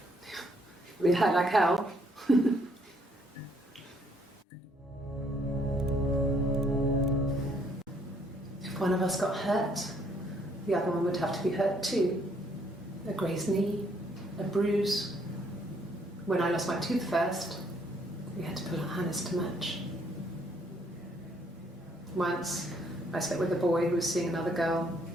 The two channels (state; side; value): normal; both; correlation 0.68